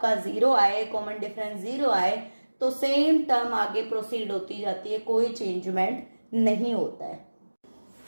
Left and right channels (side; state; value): both; inverted; correlation -1.00